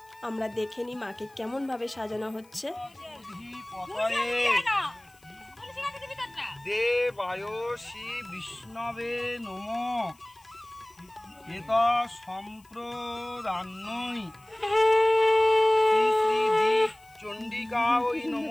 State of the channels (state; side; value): noise; left; hiss, 30 dB below the sound